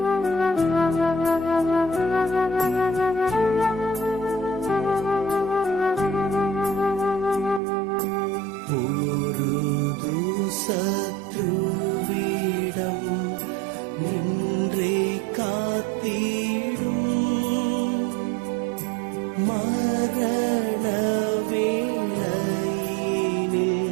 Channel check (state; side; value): drops out; left; at 7.6 s